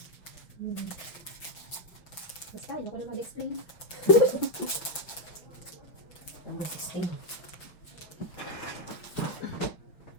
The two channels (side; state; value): right; late; 5.9 ms